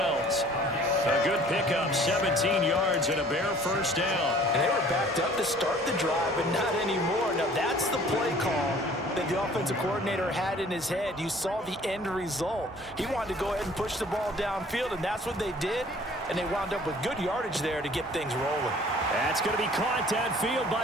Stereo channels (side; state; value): both; normal; correlation 0.52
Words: A good pickup, 17 yards and a Bear 1st down. And they were backed up to start the drive, but not anymore. Now that's the play call that the offensive coordinator had in his head. You saw the end result. He wanted to go ahead and push the ball downfield, and that's what they did. And they wound up with good yardage there to get things rolling. That's going to be caught downfield